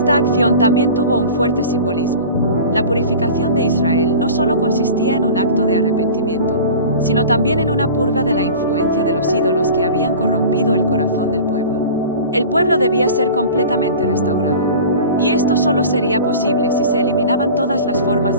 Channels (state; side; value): inverted; both; correlation -0.38